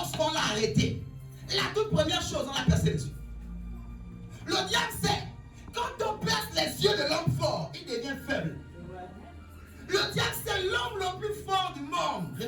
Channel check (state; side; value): identical; both; correlation 1.00